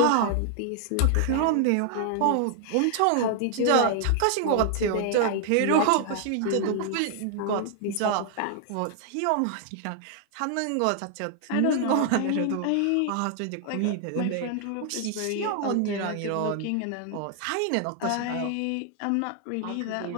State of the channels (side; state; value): both; different; correlation 0.00